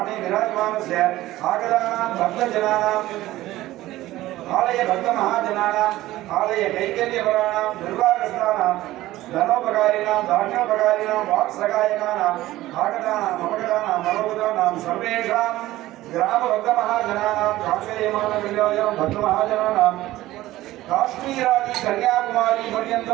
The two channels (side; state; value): left; quieter; 16.2 dB